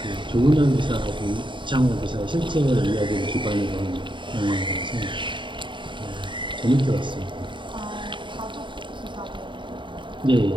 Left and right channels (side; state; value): left; late; 0.23 ms